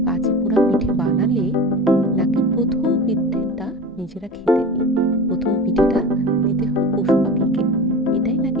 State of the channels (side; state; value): both; normal; correlation 0.32